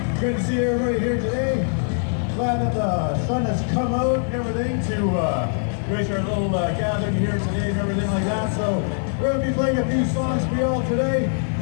Good to see everybody here today. Glad that the sun has come out and everything to grace our little gathering here today and everything like that. So we're going to be playing a few songs for y'all today.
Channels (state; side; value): silent; right; 55 dB below the other